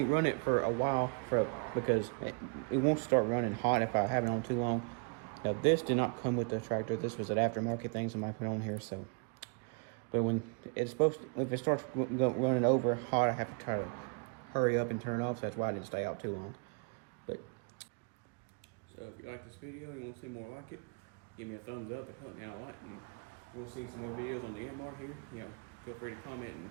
run it for a while because it won't start running hot if I have it on too long. Now this did not come with the tractor. This was an aftermarket thing somebody put on here. So, but when it's supposed to, if it starts running over hot, I have to try to hurry up and turn it off. So that's why I didn't stay out too long. But so if you like this video and you want to see more like it, give me a thumbs up. It helped me out a lot. And you want to see some more videos on the Yanmar here, feel free to comment and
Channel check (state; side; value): quieter; left; 38.5 dB